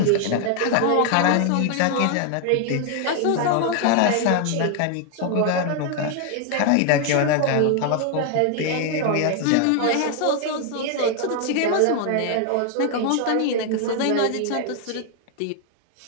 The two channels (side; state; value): both; different; correlation 0.00